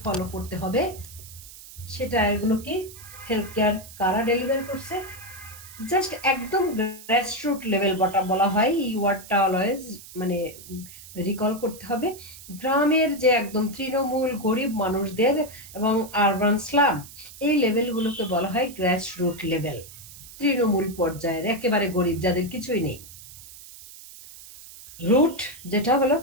ফলো করতে হবে। সে টায়ার গুলো কি হেলথ কেয়ার কারা ডেলিভার করছে, জাস্ট একদম গ্রাসরুট লেভেল বটা বলা হয়, এই ওয়ার্ডটা অলওয়েজ মানে রিকল করতে হবে। গ্রামের যে একদম তৃণমূল গরিব মানুষদের এবং আরবান স্লাম, এই লেভেলগুলোকে বলা হয় গ্রাসরুট লেভেল, তৃণমূল পর্যায়ের একেবারে গরিব যাদের কিছুই নেই। রুট যেটা হলো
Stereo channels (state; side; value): noise; right; hiss, 17 dB below the sound